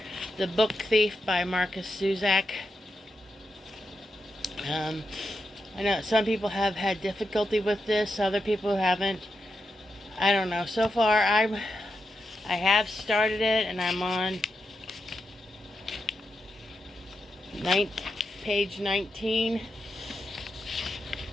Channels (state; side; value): normal; both; correlation 0.86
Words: The Book Thief by Marcus Zusak. Um, I know some people have had difficulty with this, other people haven't. I don't know. So far, I have started it, and I'm on page 19,